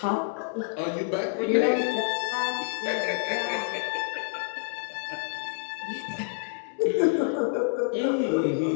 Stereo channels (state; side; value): silent; right; 59 dB below the other